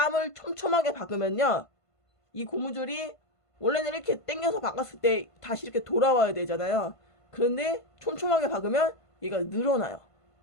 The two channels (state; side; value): late; right; 1.5 ms